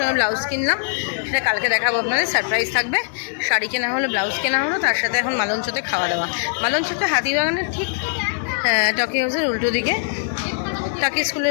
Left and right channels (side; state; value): right; silent; digital silence